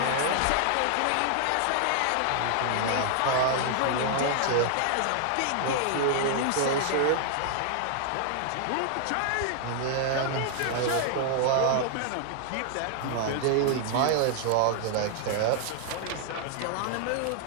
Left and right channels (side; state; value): both; different; correlation 0.00